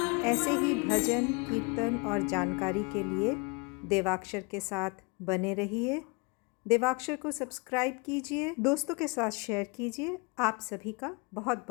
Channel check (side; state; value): right; quieter; 29.5 dB